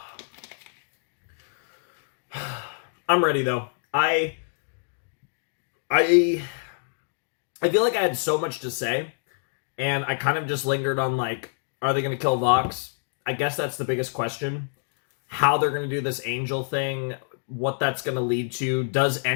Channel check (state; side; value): silent; right; digital silence